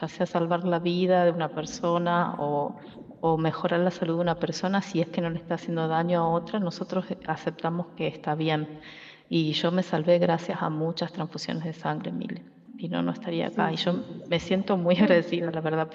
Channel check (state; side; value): identical; both; correlation 1.00